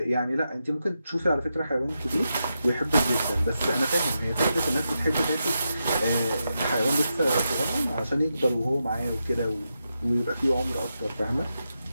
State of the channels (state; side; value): inverted; both; correlation -0.87